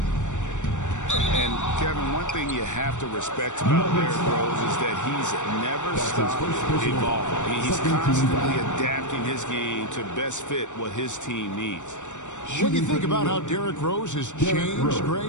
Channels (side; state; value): right; late; 0.85 ms